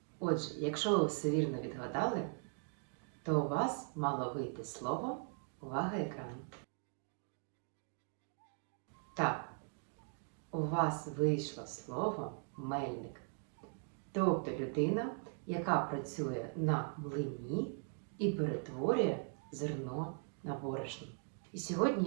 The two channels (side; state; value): left; silent; 51 dB below the other